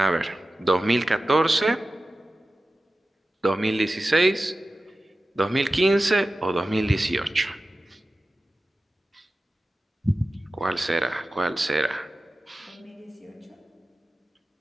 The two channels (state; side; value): normal; both; correlation 0.95